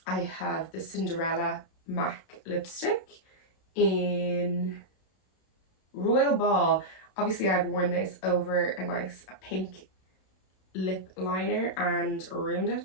I have the Cinderella MAC lipstick in Royal Ball. Obviously I've worn this over a nice pink lip liner and ruined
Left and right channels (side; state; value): right; late; 32 ms